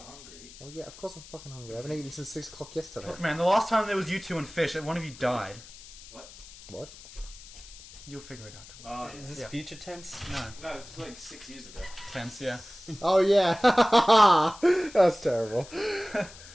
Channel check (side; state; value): left; noise; hiss, 18 dB below the sound